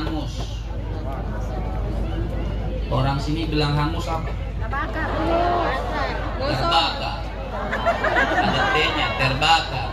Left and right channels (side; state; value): both; identical; correlation 1.00